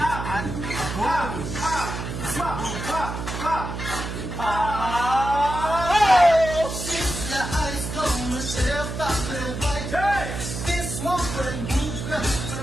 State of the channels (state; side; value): noise; right; hum, 6 dB below the sound